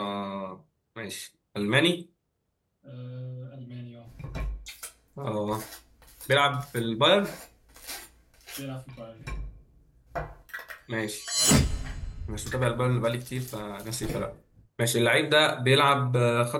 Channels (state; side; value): identical; both; correlation 1.00